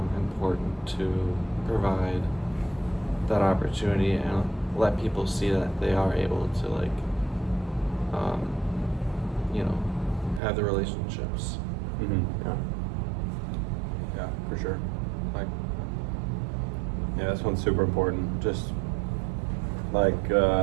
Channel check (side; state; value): left; drops out; at 10.4 s